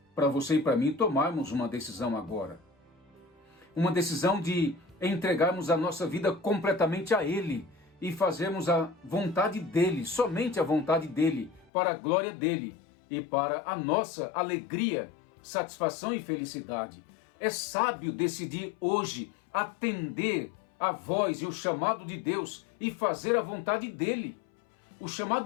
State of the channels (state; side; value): drops out; right; at 11.7 s